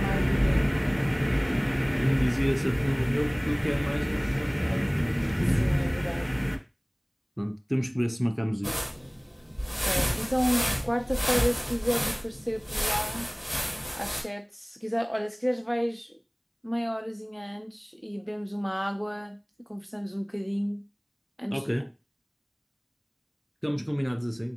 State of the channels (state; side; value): identical; both; correlation 1.00